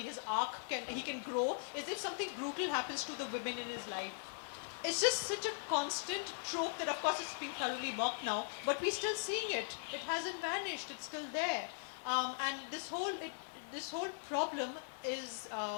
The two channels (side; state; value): right; silent; 51 dB below the other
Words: arc, he can grow, is if something brutal happens to the women in his life. It's just such a constant trope that, of course, it's being thoroughly mocked now, but we're still seeing it. It hasn't vanished. It's still there. And this whole problem is,